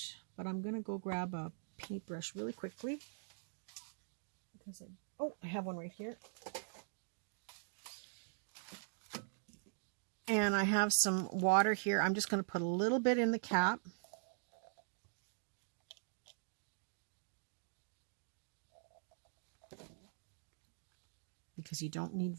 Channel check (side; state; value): left; silent; digital silence